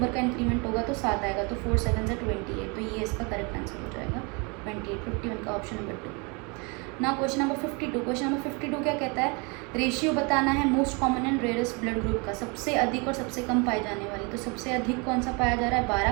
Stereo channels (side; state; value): left; quieter; 31.0 dB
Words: का इंक्रीमेंट होगा तो 7 आएगा। तो 4 7 से 28। तो ये इसका करेक्ट आंसर हो जाएगा 28। 51 का ऑप्शन नंबर 2। ना क्वेश्चन नंबर 52। क्वेश्चन नंबर 52 क्या कहता है? रेशियो बताना है most common and rarest blood group का, सबसे अधिक और सबसे कम पाई जाने वाली। तो सबसे अधिक कौन सा पाया जा रहा है?